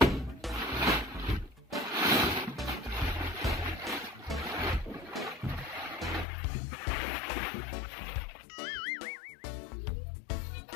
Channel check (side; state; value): right; drops out; at 6.2 s